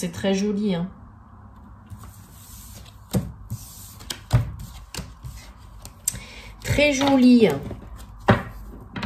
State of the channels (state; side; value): identical; both; correlation 1.00